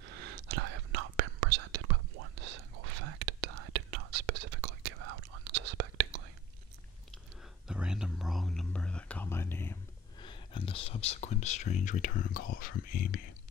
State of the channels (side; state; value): both; normal; correlation 0.40